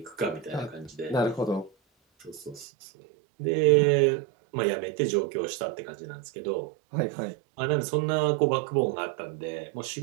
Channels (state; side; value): drops out; left; at 2.7 s